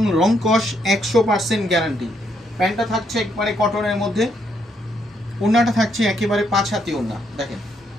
রং কস 100% গ্যারান্টি। প্যান্টটা থাকছে একবারে কটনের মধ্যে, ওড়নাটা থাকছে একেবারে 5 হাতি ওড়না। দেখেন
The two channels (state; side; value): normal; both; correlation 0.74